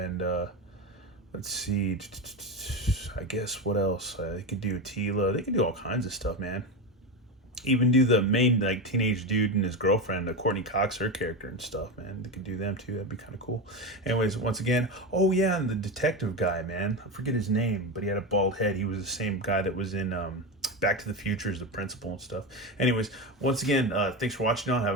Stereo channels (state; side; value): normal; both; correlation 0.17